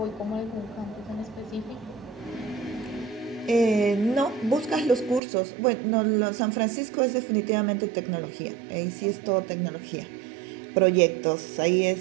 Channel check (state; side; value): drops out; left; at 5.2 s